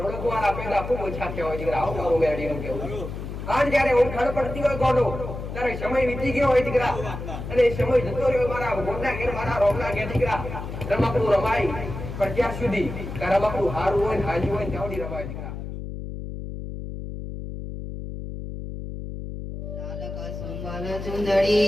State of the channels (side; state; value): left; noise; hum, 8 dB below the sound